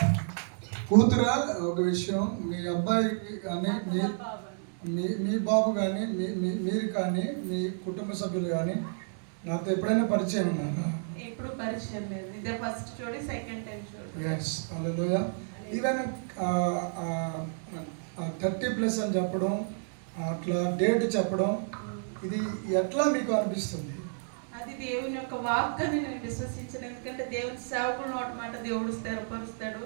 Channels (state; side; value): silent; left; digital silence